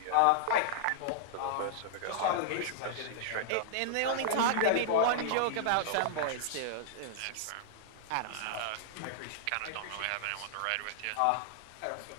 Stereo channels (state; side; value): different; both; correlation -0.01